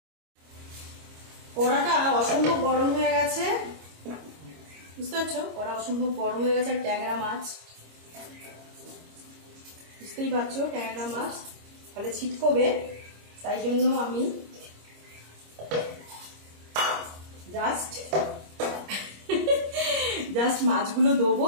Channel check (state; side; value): late; left; 25 ms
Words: কড়াটা অসম্ভব গরম হয়ে গেছে, বুঝতে পারছো? কড়া অসম্ভব গরম হয়ে গেছে। আর ট্যাংরা মাছ বুঝতেই পারছো, ট্যাংরা মাছ তাহলে ছিটকবে, তাই জন্য আমি জাস্ট মাছগুলো দেবো,